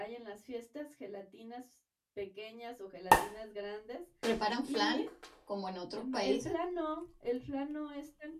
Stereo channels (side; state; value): both; identical; correlation 1.00